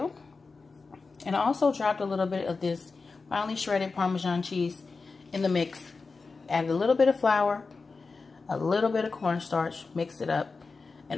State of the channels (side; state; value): right; quieter; 4.2 dB